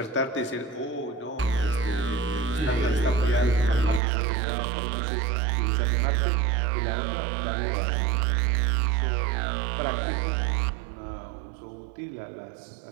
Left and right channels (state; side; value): drops out; left; at 4.0 s